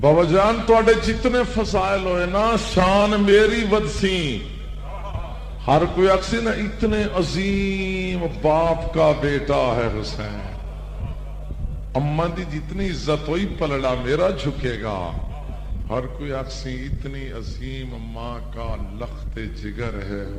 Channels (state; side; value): identical; both; correlation 1.00